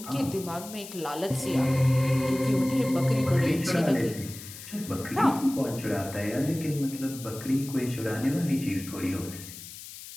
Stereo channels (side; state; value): left; noise; hiss, 14 dB below the sound